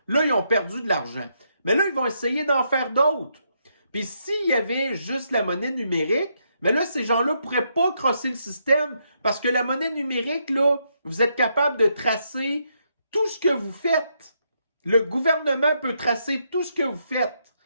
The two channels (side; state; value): both; inverted; correlation -0.78